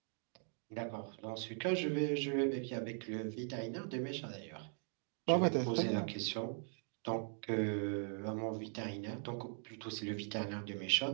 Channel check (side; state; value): left; silent; 51 dB below the other